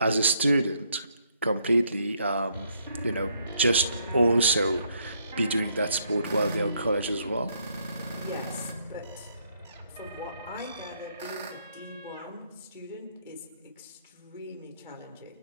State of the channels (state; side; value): inverted; both; correlation -0.70